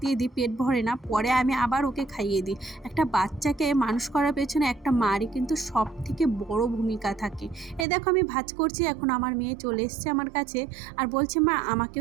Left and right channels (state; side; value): drops out; left; at 7.9 s